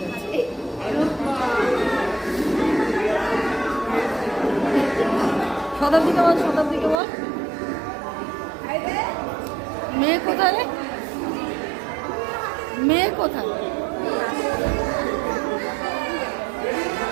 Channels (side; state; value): left; drops out; at 7.0 s